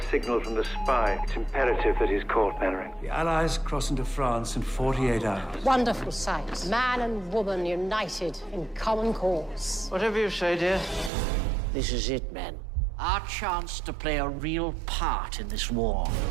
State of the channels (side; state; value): left; drops out; at 11.1 s